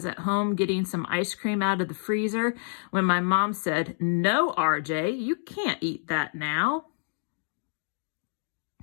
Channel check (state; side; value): silent; right; digital silence